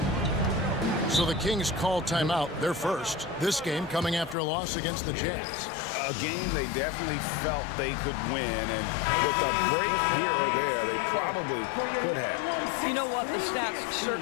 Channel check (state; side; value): drops out; right; at 4.4 s